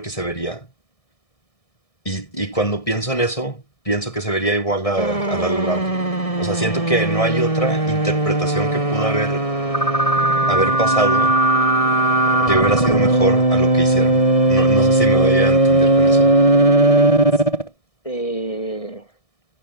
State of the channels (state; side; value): late; right; 1.6 ms